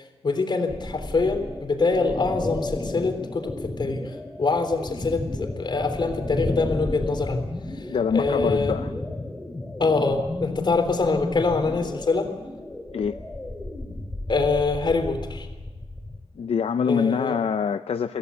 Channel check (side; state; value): right; quieter; 3.6 dB